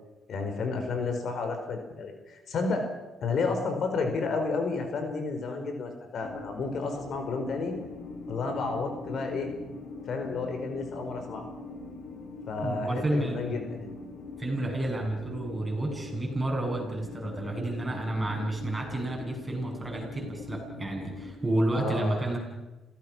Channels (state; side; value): normal; both; correlation 0.78